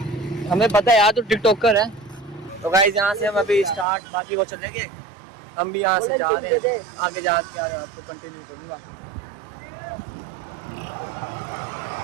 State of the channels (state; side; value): drops out; left; at 3.9 s